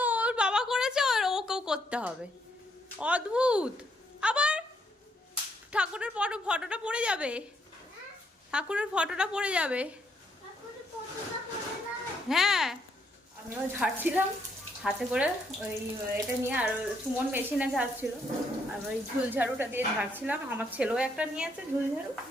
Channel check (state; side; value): normal; both; correlation 0.74